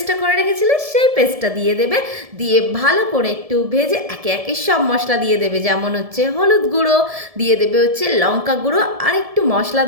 করে রেখেছিলে সেই পেস্টটা দিয়ে দেবে। দিয়ে ভালো করে একটু ভেজে একে একে সব মশলা দিয়ে দেবে, যেমন হচ্ছে হলুদ গুঁড়ো দিয়ে দেবে, হচ্ছে লঙ্কা গুঁড়ো আর একটু মশলা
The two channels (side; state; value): left; late; 1.7 ms